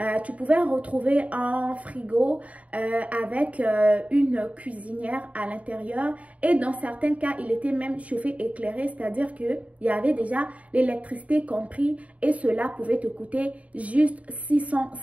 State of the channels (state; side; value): late; left; 0.067 ms